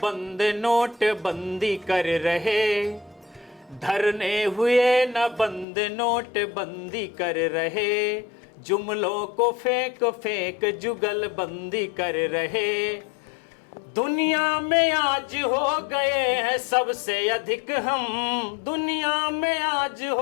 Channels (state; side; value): drops out; right; at 5.7 s